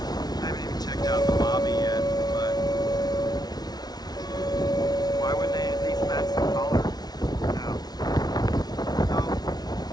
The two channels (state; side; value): late; right; 0.19 ms